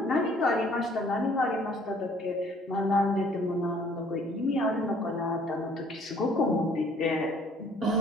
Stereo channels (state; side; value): normal; both; correlation 0.58